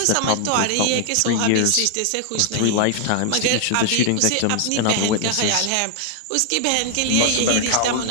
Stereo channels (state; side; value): different; both; correlation 0.00